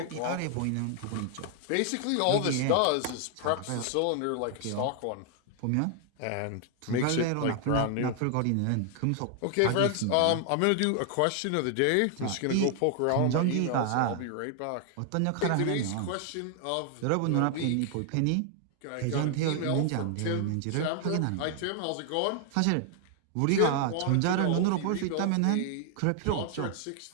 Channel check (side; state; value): both; different; correlation 0.00